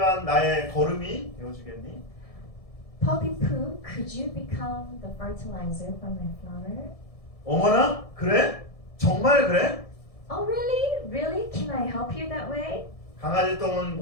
나의 거름이 되어주겠니? Poppy poo, could you become the fertilizer for my flower? 어머나? 그래? 정말 그래? Oh, really? Really? Can I help you that way? 강아지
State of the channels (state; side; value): late; right; 1.7 ms